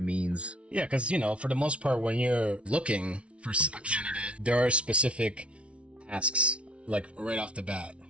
means. Yeah, because for the most part, when you're looking for a candidate, there are specific tasks, like right off the bat,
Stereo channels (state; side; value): late; left; 0.061 ms